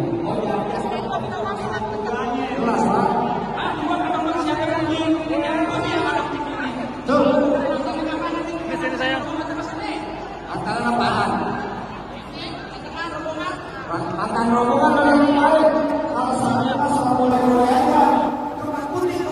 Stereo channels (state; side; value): identical; both; correlation 1.00